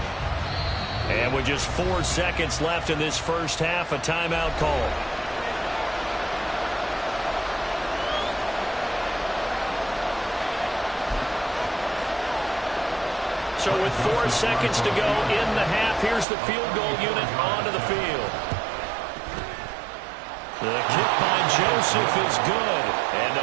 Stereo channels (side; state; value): left; drops out; at 16.2 s